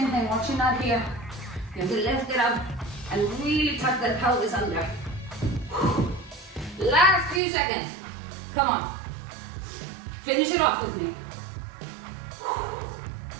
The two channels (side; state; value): left; drops out; at 7.4 s